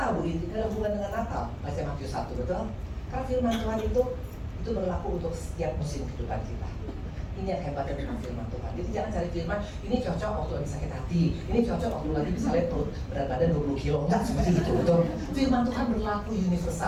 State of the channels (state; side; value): identical; both; correlation 1.00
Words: Bu, ini ada hubungan dengan Natal. Baca Matius 1, betul? Karena firman Tuhan itu berlaku untuk setiap musim kehidupan kita. Ini yang hebat dengan firman Tuhan. Jadi jangan cari firman, ini cocok waktu lagi sakit hati, ini cocok waktu lagi misalnya perut berat badan 20 kilo. Enggak seperti itu, betul? Firman Tuhan berlaku